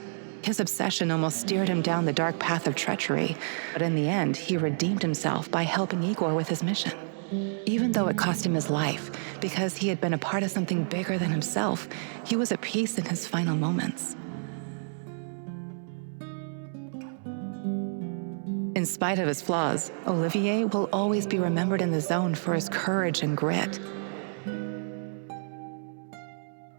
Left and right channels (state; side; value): silent; left; digital silence